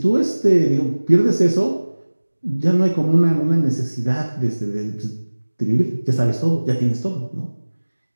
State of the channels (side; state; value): both; inverted; correlation -1.00